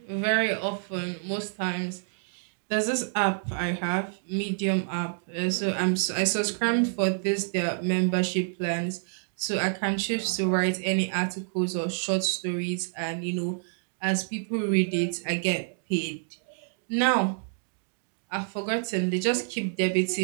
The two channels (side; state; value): left; silent; digital silence